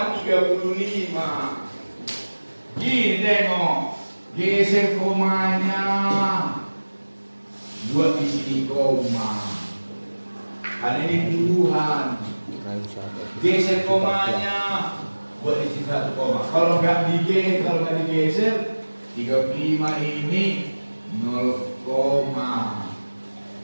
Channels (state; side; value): inverted; both; correlation -1.00